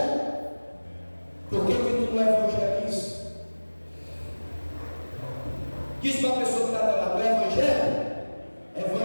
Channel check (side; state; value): both; inverted; correlation -1.00